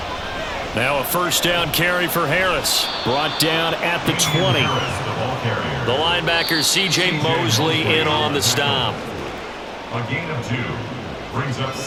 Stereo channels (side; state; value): both; identical; correlation 1.00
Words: Now a first down carry for Harris. Brought down at the 20. The linebacker C.J. Mosley in on the stop. A gain of 2 brings up